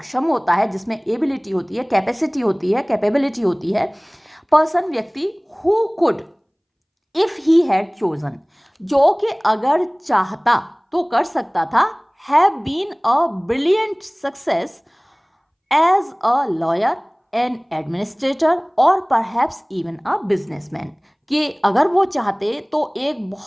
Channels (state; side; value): identical; both; correlation 1.00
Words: होता है, जिसमें एबिलिटी होती है, कैपेसिटी होती है, कैपेबिलिटी होती है, पर्सन व्यक्ति, who could if he had chosen, जो कि अगर चाहता तो कर सकता था, have been a brilliant success as a lawyer, an administrator, और परहैप्स इवन अ बिजनेसमैन, कि अगर वो चाहते तो एक